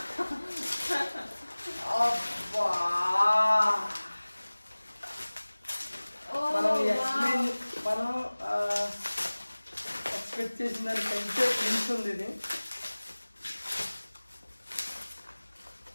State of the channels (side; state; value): both; inverted; correlation -1.00